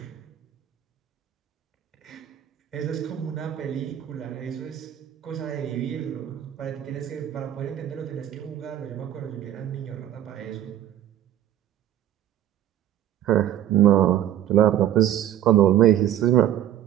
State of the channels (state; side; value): quieter; left; 11.5 dB